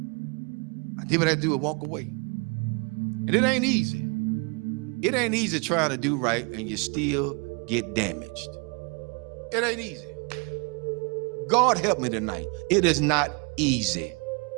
I did what I had to do and walk away. And it ain't easy. It ain't easy trying to do right and you still get damaged. It ain't easy. God help me tonight. It is not easy.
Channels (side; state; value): left; quieter; 32.4 dB